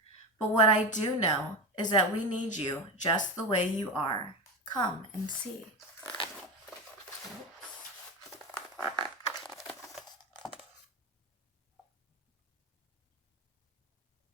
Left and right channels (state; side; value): normal; both; correlation 0.20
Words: But what I do know is that we need you just the way you are. Come and see.